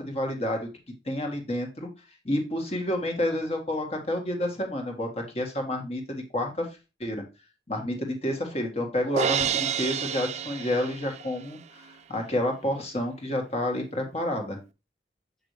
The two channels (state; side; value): normal; both; correlation 0.55